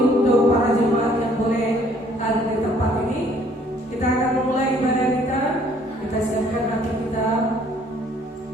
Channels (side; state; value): both; normal; correlation 0.60